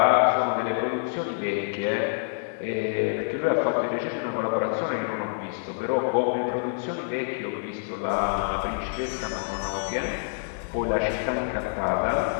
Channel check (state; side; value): silent; right; 60 dB below the other